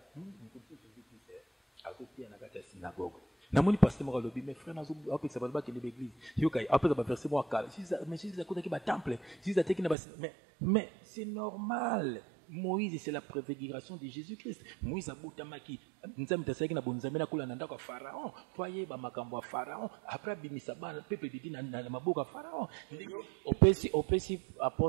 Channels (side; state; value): left; drops out; at 10.0 s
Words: akotia na kata synagogue namoni pasteur moko lobi mes frères nazo apesa ba kende l'église yokai apesa ba verset mo akala mais si za kota ki ba temple si za teki na ba mais c'est normal. Moïse c'est la préfiguration de Jésus-Christ. Moïse abutamaki nzambe tasaki na bonzambe na kula na ndako Pharaon toye ba makambo ya Pharaon après bimisa bana peuple didi na maboka Pharaon opesi